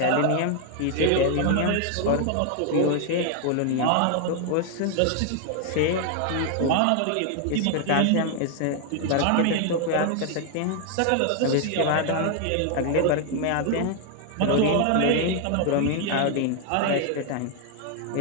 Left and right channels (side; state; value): both; different; correlation 0.00